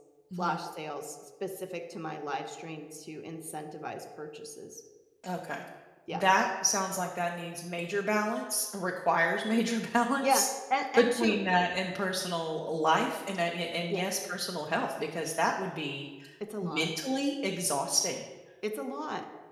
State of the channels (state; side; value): identical; both; correlation 1.00